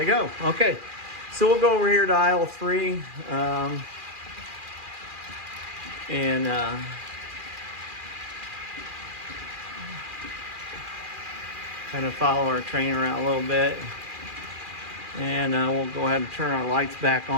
go. Okay, so we'll go over here to aisle 3. And kind of follow our train around a little bit. And we'll go ahead and turn our lights back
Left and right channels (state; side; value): late; left; 2.4 ms